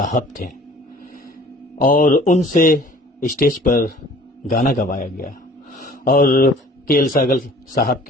थे, और उनसे स्टेज पर गाना गवाया गया। और के.एल. सहगल साहब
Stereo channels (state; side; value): normal; both; correlation 0.49